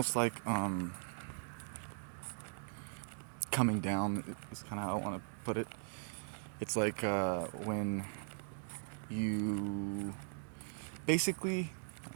like coming down is kind of how I want to put it. It's like when you basically,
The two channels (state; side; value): silent; left; digital silence